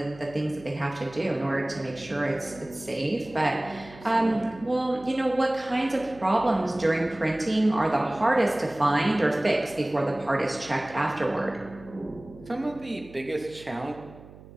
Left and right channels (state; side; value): noise; right; hum, 20 dB below the sound